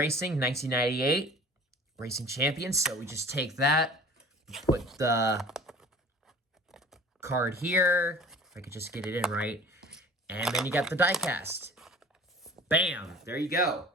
1998. Racing Champions, so we just take that, put the card here, if I could just get it in right, and then you got the diecast. Bam! There you go.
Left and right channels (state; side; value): normal; both; correlation 0.45